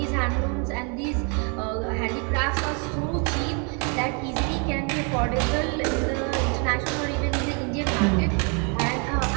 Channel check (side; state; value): left; quieter; 36.6 dB